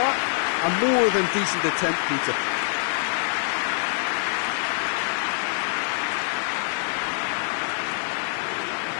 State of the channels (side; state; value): right; silent; digital silence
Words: A more than decent attempt, Peter.